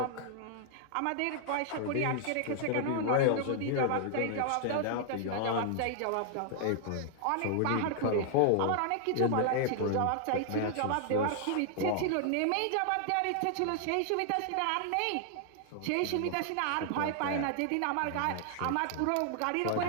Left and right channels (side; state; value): both; different; correlation 0.00